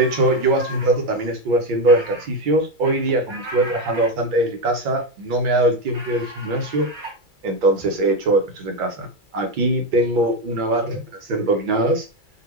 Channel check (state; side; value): late; left; 2.3 ms